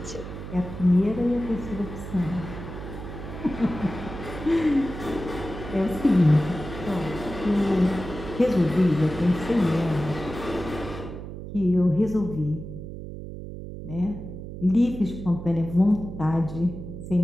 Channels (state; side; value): noise; right; hum, 10 dB below the sound